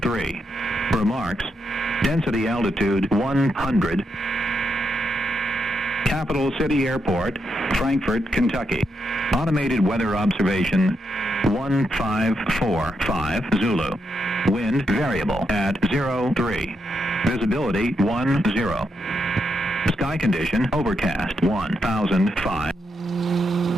Remarks. Density altitude 100. Capital City Airport, Frankfort, Kentucky. Automated weather observation 1545 Zulu. Wind variable at 03. Visibility 10. Sky condition overcast 1005.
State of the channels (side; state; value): both; normal; correlation 0.82